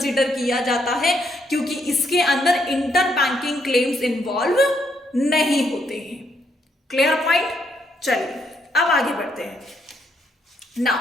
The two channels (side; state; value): both; normal; correlation 0.74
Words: किया जाता है, क्योंकि इसके अंदर इंटर बैंकिंग क्लेम्स इन्वॉल्व नहीं होते हैं। Clear point. चलिए अब आगे बढ़ते हैं।